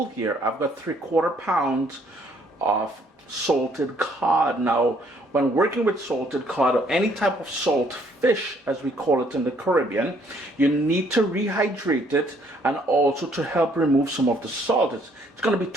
here, I've got 3/4 pounds of salted cod. Now, when working with salted cod or any type of salt fish, as we call it in the Caribbean, you need to rehydrate it and also to help remove some of the salt. It's going to be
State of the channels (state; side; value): normal; both; correlation 0.65